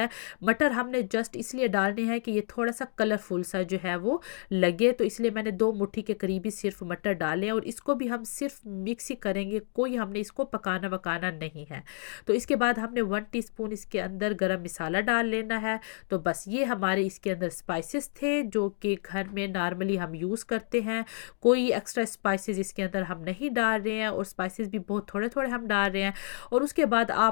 है। मटर हमने जस्ट इसलिए डालने हैं कि ये थोड़ा सा कलरफुल सा जो है वो लगे, तो इसलिए मैंने 2 मुट्ठी के करीब ही सिर्फ मटर डाले हैं। और इसको भी हम सिर्फ मिक्स ही करेंगे, कोई हमने इसको पकाना वकाना नहीं है। तो इसके बाद हमने 1 टीस्पून इसके अंदर गरम मसाला डाल लेना है। तो बस ये हमारे इसके अंदर स्पाइसेस थे जो कि घर में नॉर्मली हम यूज़ करते हैं। कोई एक्स्ट्रा स्पाइसेस इसके अंदर हम नहीं डाल रहे हैं, और स्पाइसेस भी बहुत थोड़े थोड़े हम डाल रहे हैं। और उसके बाद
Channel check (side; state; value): right; silent; 58 dB below the other